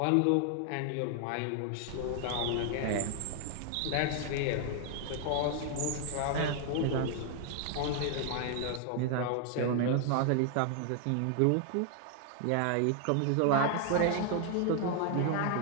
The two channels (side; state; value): both; different; correlation 0.00